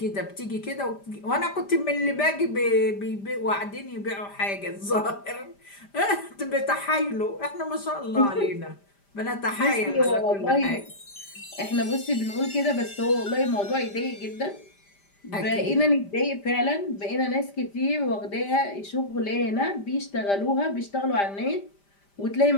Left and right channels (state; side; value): late; right; 5.0 ms